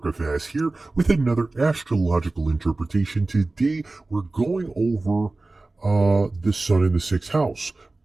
here with another astrological interpretation. Today, we're going over the sun in the sixth house.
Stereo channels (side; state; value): left; quieter; 3.2 dB